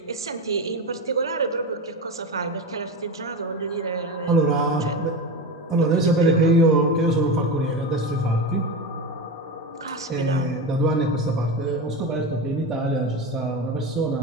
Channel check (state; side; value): normal; both; correlation 0.22